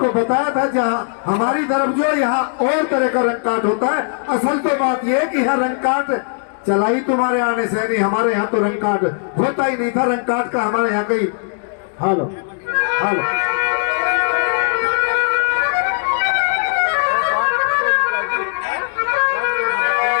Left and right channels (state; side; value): silent; right; digital silence